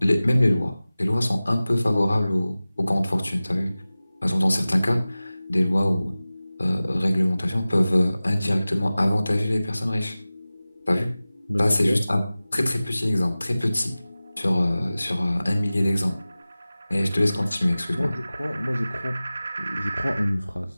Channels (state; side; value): inverted; both; correlation -0.97